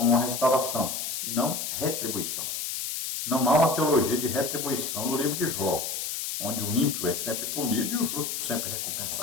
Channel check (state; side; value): noise; left; hiss, 3 dB below the sound